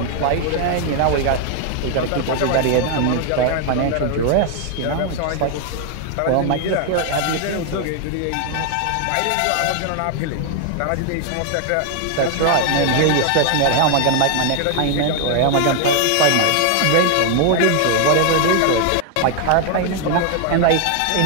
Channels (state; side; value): different; both; correlation 0.00